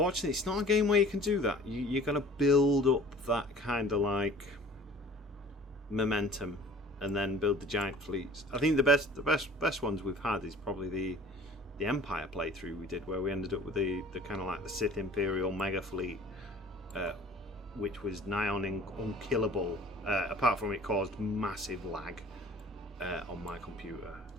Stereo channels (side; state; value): both; normal; correlation 0.48